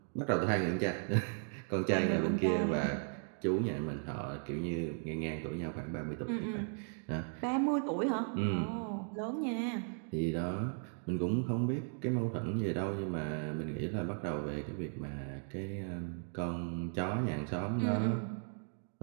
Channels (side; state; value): left; silent; 54 dB below the other